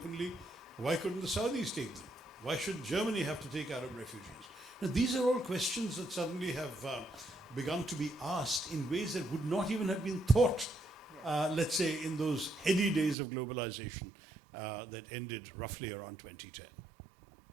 why couldn't the Saudis take them? Why should Germany have to take Arab refugees? Now, these are all questions that suddenly have begun to be asked in ways that would not even have been thought, let's say, in those heady days of globalization that ended roughly around 2010.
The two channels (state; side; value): drops out; left; at 13.2 s